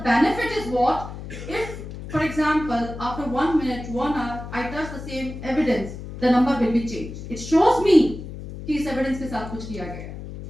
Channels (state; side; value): noise; left; hum, 10 dB below the sound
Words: benefit is what? If, for example, after 1 minute, 1 hour, I touch the same evidence, the number will be changed. It shows me कि इस evidence के साथ कुछ किया गया.